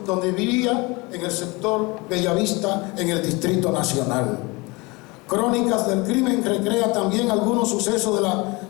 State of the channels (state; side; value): quieter; right; 25.5 dB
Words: donde vivía, en el sector Bellavista, en el Distrito Nacional. Crónicas del Crimen recrea también algunos sucesos de la